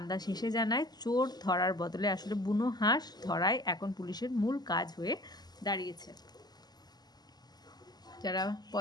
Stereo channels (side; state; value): right; late; 0.20 ms